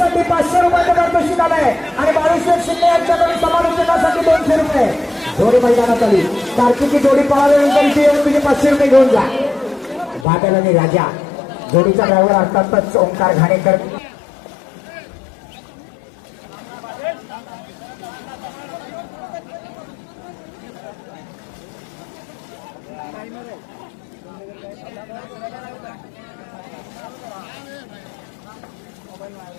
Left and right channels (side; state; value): right; drops out; at 10.2 s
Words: 500 रुपयाचं पारितोषिक आलंय आणि बाळूशेठ शिंदे यांच्याकडून समालोचनासाठी 200 रुपये. जोडी मैदानात आली. कार्तिकी जोडी पळाल्यानंतर इथे येऊन तुम्ही 500 रुपये घेऊन जा. बादल आणि राजा जोडीचा ड्रायव्हर अर्थातच ओंकार घाणेकर.